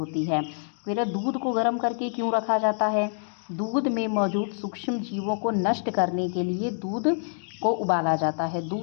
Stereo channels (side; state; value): right; silent; digital silence